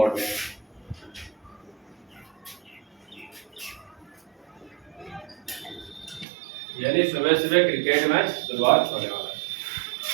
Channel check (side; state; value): left; drops out; at 6.2 s